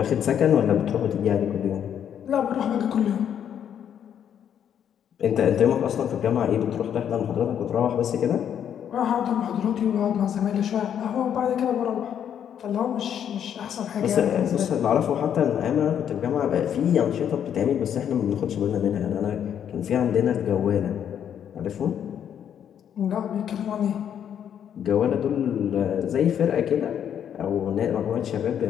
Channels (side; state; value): right; quieter; 9.1 dB